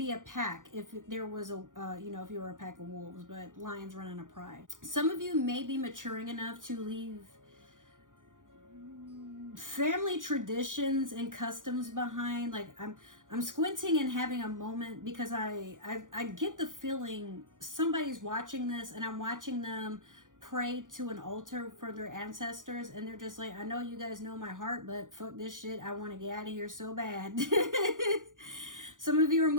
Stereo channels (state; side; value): late; left; 0.88 ms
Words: a pack if there was a, if you were a pack of wolves, but lions run on a pride. Some of you may be maturing enough to leave family traditions and customs behind. Like I'm squinting and having a moment because I get the feeling somebody's watching this and I'm watching them pray to an altar for their ancestors, and they're just like, I know you guys know my heart, but fuck this shit, I want to get out of here so bad. Some of you are